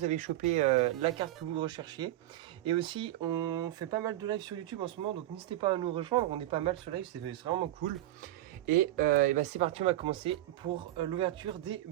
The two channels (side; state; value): left; quieter; 14.7 dB